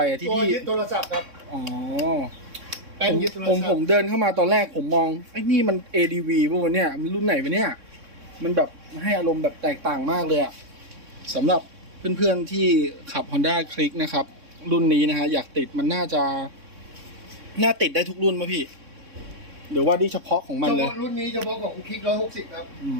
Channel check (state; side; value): late; left; 3.6 ms